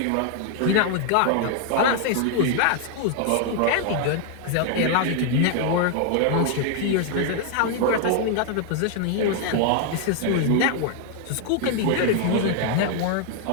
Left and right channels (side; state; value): both; different; correlation 0.00